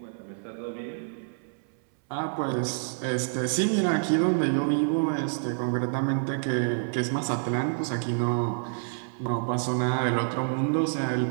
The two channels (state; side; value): silent; left; 60 dB below the other